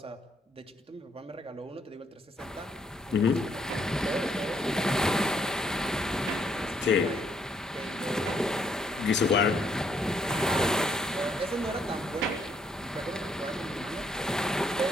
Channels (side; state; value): both; normal; correlation 0.70